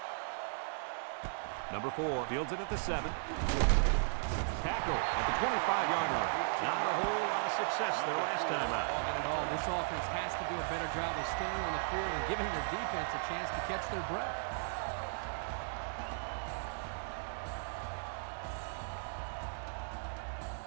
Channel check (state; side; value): silent; left; digital silence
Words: Number 4 fields it at the 7. Tackle at the 25-yard line. Not a whole lot of success there last time out. Not at all. This offense has to do a better job of staying on the field and giving their defense a chance to catch their breath.